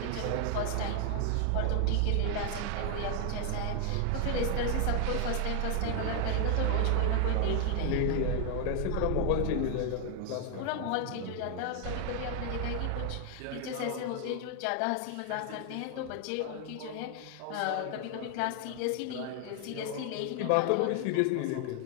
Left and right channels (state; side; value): different; both; correlation 0.00